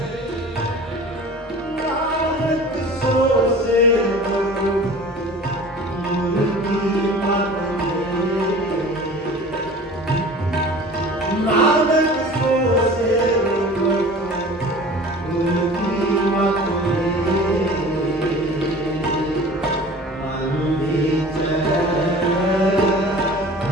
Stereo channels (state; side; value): normal; both; correlation 0.42